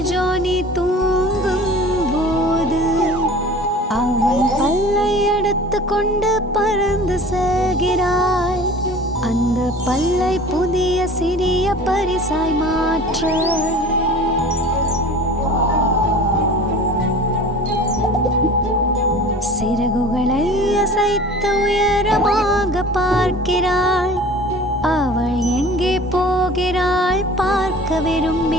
ஜானி தூங்கும் போது அவன் பல்லை எடுத்து கொண்டு பறந்து செல்கிறாள். அந்த பல்லை புதிய சிறிய பரிசாய் மாற்ற சிறகுகளை அசைத்து உயரமாக பார்க்கிறாள். அவள் எங்கே போகிறாள் பார்க்க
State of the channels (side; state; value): both; normal; correlation 0.42